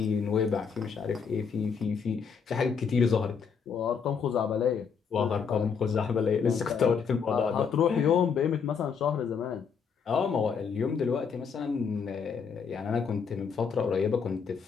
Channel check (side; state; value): right; quieter; 6.2 dB